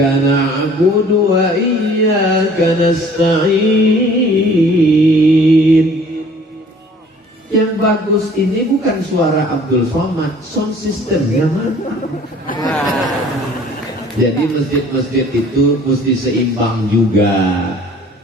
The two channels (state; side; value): normal; both; correlation 0.53